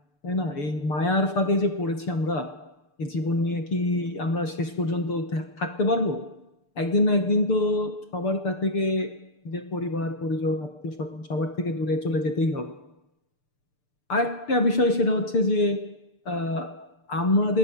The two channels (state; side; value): late; right; 6.8 ms